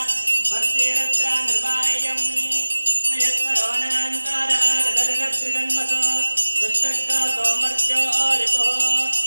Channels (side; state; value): both; inverted; correlation -1.00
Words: वर्तिरत्रा निर्वाह्यं नयत्परोऽनन्तरागदर्गत्रिजन्मसो दुष्टक्का सोमर्त्यो रिपुः